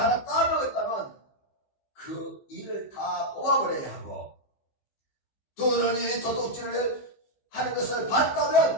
하나 따먹었다면 그 일을 다 뽑아버려야 하고 두 눈이 도둑질을 하는 것을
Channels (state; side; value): late; right; 15 ms